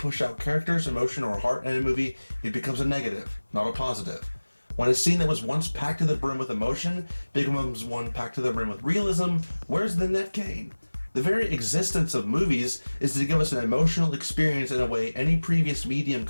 out characters, emotion, or heart in a movie, it becomes a negative, not a positive. When a scene that was once packed to the brim with emotion becomes one packed to the brim with realism, where's the net gain? The very existence of movies is to give us an emotional experience in a way any previous medium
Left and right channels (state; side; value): inverted; both; correlation -1.00